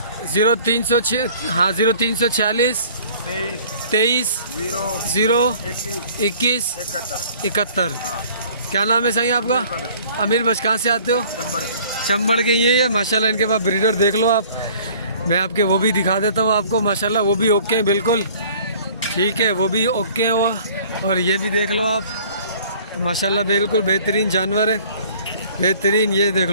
0346 हाँ 0346 23 0 21 71। क्या नाम है साईं आपका? अमीर बस। कहाँ से आते हो? चंबड़ के। ये है माशाल्लाह। इनके पास ब्रीडर देख लो आप, मैं आपके वो भी दिखा देता हूँ आपको माशाल्लाह। वो भी ओके हैं बिल्कुल। ठीक है, वो भी ओके हैं वो। और ये भी देख लो आप माशाल्लाह, बिल्कुल बेहतरीन जानवर है, बेहतरीन। ये देख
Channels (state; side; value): inverted; both; correlation -0.52